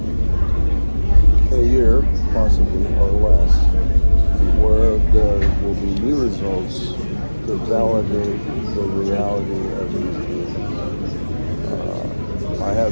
in a year, possibly, or less, where there will be new results to validate the reality of these beings. I have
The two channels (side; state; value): both; inverted; correlation -1.00